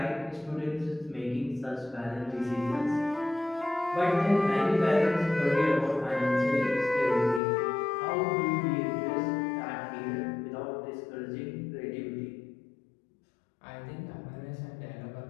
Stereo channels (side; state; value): right; drops out; at 7.4 s